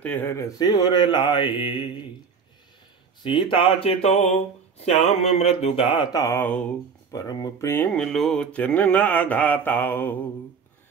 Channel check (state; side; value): quieter; left; 5.8 dB